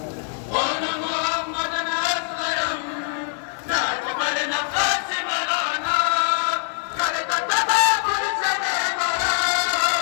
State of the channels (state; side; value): silent; right; digital silence